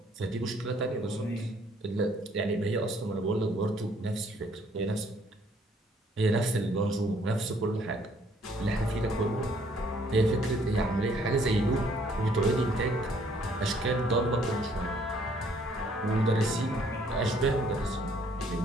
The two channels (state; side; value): normal; both; correlation 0.64